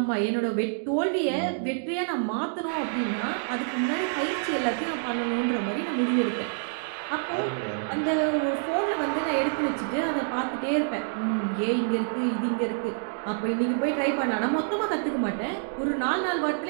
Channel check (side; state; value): left; silent; digital silence